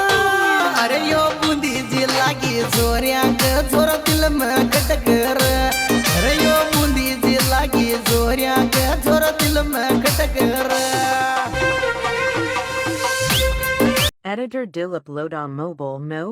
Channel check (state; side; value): identical; both; correlation 1.00